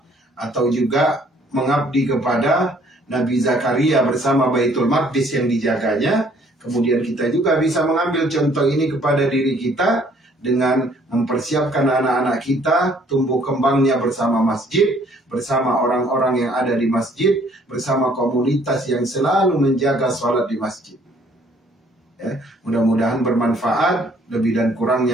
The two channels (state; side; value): normal; both; correlation 0.61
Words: atau juga mengabdi kepada Nabi Zakaria bersama Baitul Maqdis yang dijaganya. Kemudian kita juga bisa mengambil contoh ini kepada diri kita dengan mempersiapkan anak-anak kita tumbuh kembangnya bersama masjid, bersama orang-orang yang ada di masjid, bersama komunitas yang selalu menjaga sholat di masjid. Ya, mudah-mudahan bermanfaat. Lebih dan